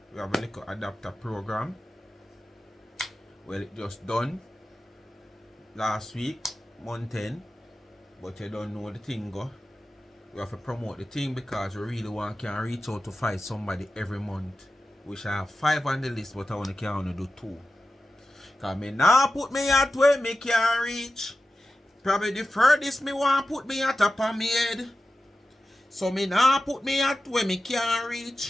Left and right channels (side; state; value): both; normal; correlation 0.93